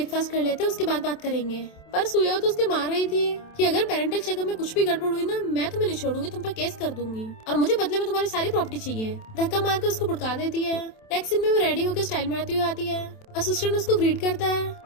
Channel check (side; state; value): right; late; 27 ms